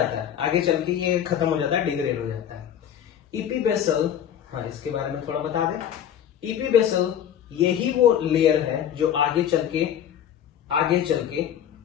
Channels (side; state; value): right; quieter; 9.7 dB